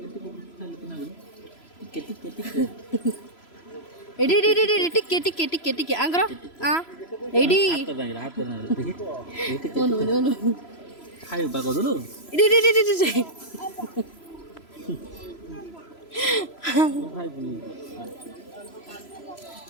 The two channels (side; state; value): right; late; 3.0 ms